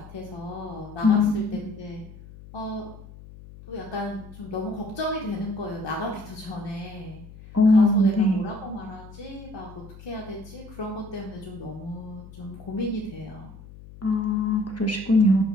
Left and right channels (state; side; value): noise; left; hum, 17 dB below the sound